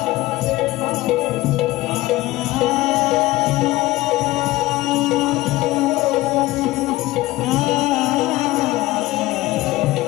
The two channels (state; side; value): quieter; right; 18.4 dB